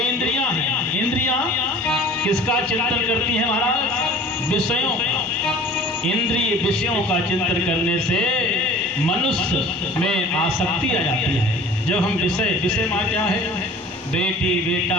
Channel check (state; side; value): normal; both; correlation 0.45